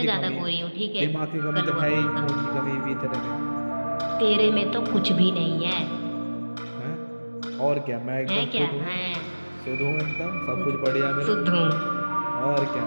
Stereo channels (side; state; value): both; inverted; correlation -1.00